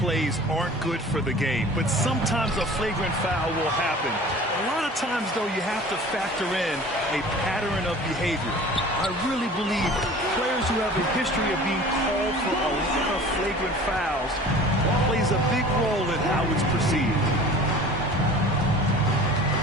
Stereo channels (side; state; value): both; normal; correlation 0.43